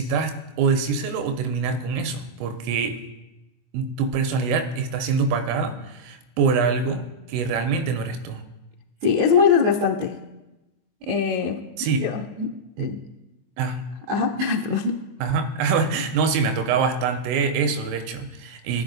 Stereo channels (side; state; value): left; late; 24 ms